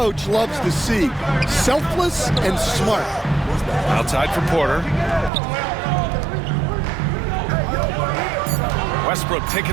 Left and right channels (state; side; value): drops out; left; at 5.3 s